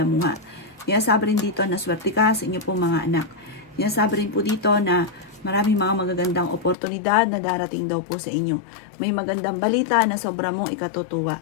Sinasabi rin dito na swerte ka sa inyo pong mga anak. Sinasabi rin po dito na maraming mga magagandang oportunidad na darating daw po sa inyo. May magandang balita na sobra mong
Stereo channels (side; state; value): right; drops out; at 6.8 s